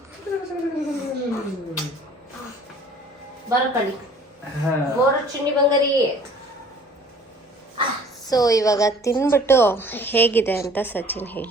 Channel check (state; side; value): normal; both; correlation 0.52